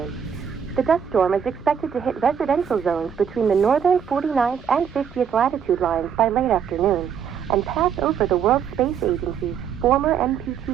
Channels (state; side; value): quieter; left; 7.7 dB